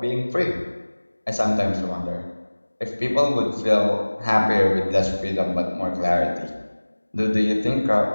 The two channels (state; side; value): inverted; both; correlation -1.00